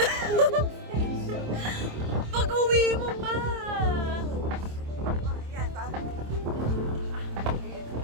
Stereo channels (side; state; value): left; late; 26 ms